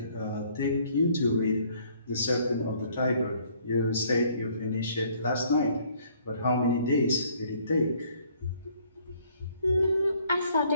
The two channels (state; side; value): inverted; both; correlation -0.62